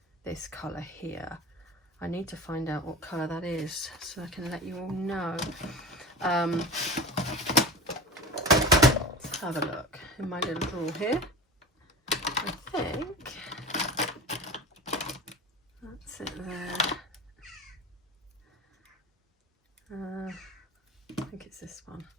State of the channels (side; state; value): both; normal; correlation 0.32